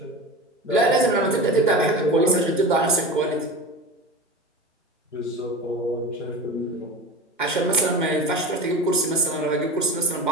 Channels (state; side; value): normal; both; correlation 0.30